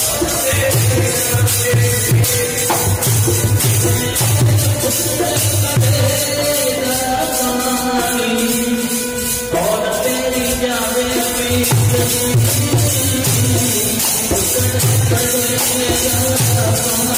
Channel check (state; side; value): identical; both; correlation 1.00